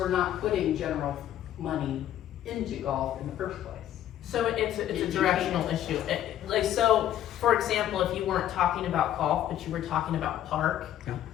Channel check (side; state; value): right; quieter; 11.7 dB